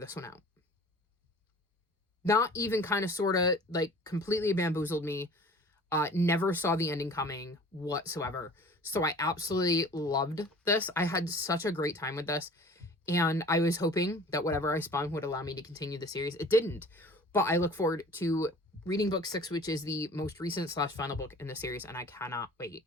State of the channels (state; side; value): normal; both; correlation 0.45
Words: one out. Not even kind of, sort of, like, completely bamboozled me. Never saw the ending coming whatsoever. So I absolutely loved this. I had such a great time with this. And I was hoping that whatever I spun would allow me to continue the series. It didn't. But I look forward to reading book 6, which is the most recent / final book in the series. And I cannot wait.